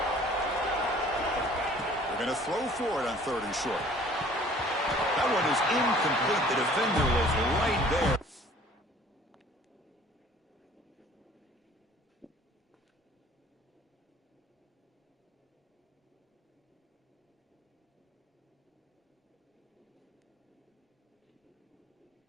Going to throw for it on 3rd and short. That one is incomplete. The defender was right there.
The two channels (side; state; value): both; normal; correlation 0.53